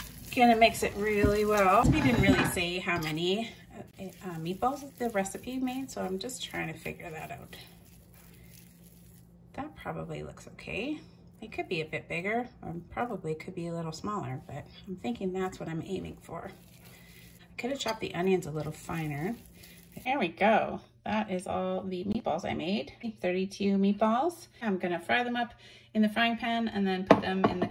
Gonna mix it really well. We didn't really say how many meatballs the recipe made, so I'm just trying to figure that out. That probably looks okay. It could be a bit bigger, or probably could be a little smaller, but I'm thinking that's what I'm aiming for. I could have chopped the onions a little finer. There we go. That is all the meatballs I made. 32 meatballs. I'm gonna fry them up in the frying pan and then put them in the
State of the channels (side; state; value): both; identical; correlation 1.00